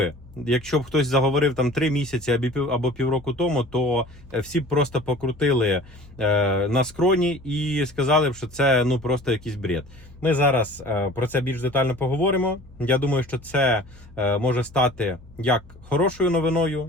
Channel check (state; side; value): normal; both; correlation 0.44